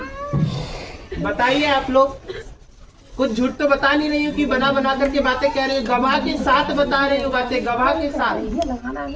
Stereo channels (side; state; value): both; identical; correlation 1.00